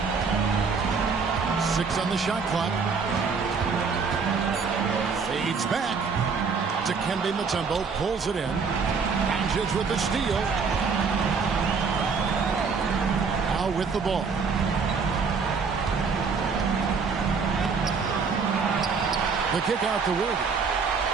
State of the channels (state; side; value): quieter; left; 5.3 dB